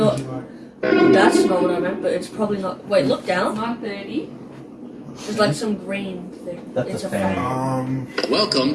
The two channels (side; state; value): both; identical; correlation 1.00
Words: would you like? That's not what I meant, but it's probably not. Wait, look down. 9:30. There's like some green thing. That's It's a a fan. fan. Welcome